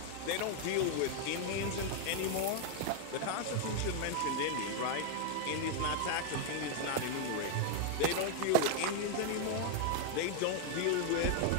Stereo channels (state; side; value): different; both; correlation 0.00